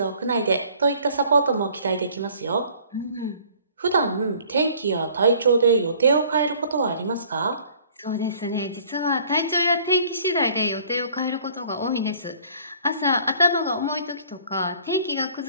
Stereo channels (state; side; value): inverted; both; correlation -0.55